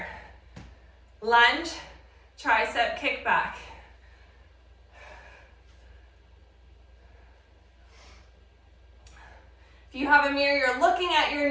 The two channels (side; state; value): both; identical; correlation 1.00